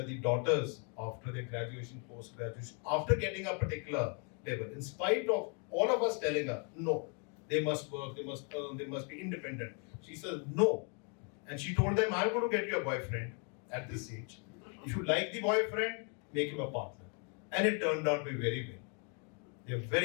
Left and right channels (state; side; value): quieter; right; 38.3 dB